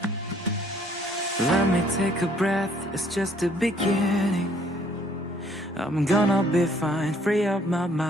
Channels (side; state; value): both; normal; correlation 0.62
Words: Let me take a breath, it's just the beginning. I'm gonna be fine, free up my